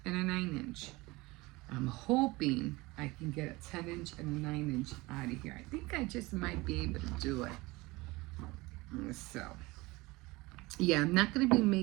and a 9-inch. I'm hoping I can get a 10-inch and a 9-inch out of here. I think I just might be able to do it. So, yeah, I'm not going to be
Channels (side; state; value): left; quieter; 22.1 dB